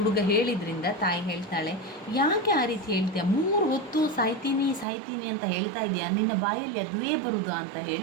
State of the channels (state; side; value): drops out; left; at 4.9 s